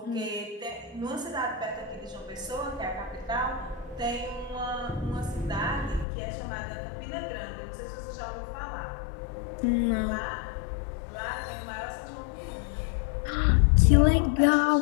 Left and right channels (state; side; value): drops out; right; at 6.1 s